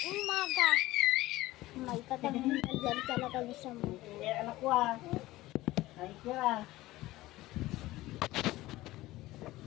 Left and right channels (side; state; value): right; quieter; 17.6 dB